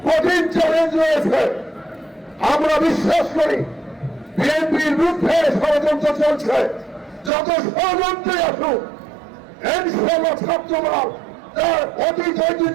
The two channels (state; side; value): drops out; left; at 7.3 s